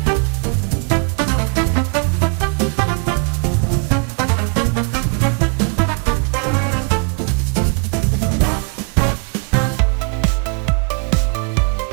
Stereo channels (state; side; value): quieter; left; 38.2 dB